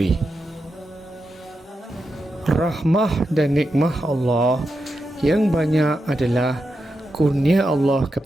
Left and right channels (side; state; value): both; normal; correlation 0.87